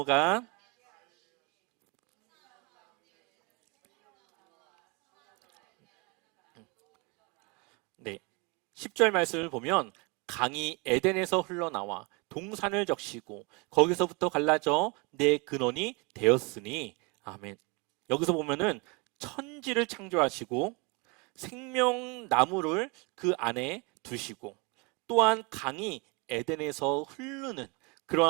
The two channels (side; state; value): left; quieter; 29.5 dB